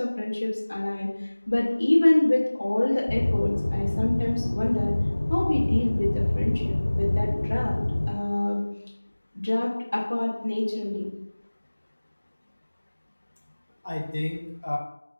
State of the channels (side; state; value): both; inverted; correlation -1.00